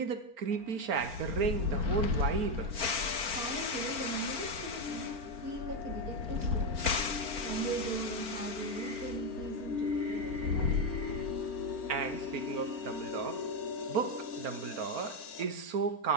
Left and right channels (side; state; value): left; late; 4.4 ms